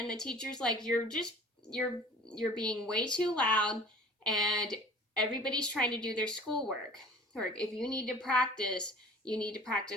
the teacher's like, you're being way too loud, and everybody's trying to do their schoolwork. Or if you need to practice, you need to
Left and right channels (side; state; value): both; normal; correlation 0.46